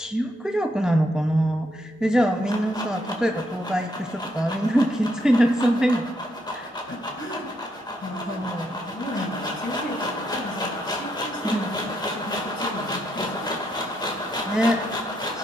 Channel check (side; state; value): both; normal; correlation 0.76